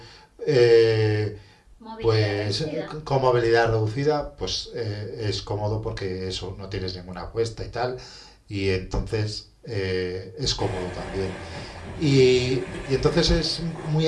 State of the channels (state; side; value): identical; both; correlation 1.00